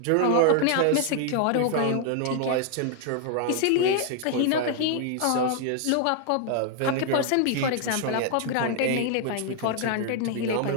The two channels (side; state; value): both; different; correlation 0.00